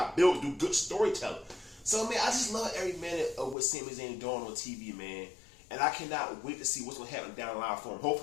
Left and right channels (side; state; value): right; drops out; at 3.6 s